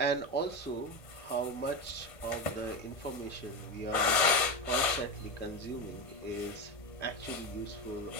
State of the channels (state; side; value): late; right; 1.5 ms